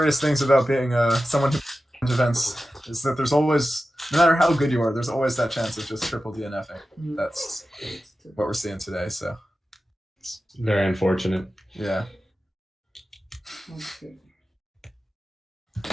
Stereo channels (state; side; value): normal; both; correlation 0.93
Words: things about being someone who wins events is that there's always, no matter how good you are, there's always that chance of just triple DNFing. That's what we're seeing today, so. Very unfortunate. Yeah. Okay.